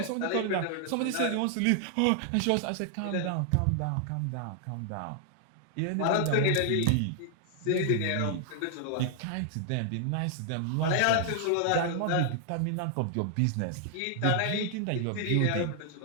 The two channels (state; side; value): different; both; correlation 0.00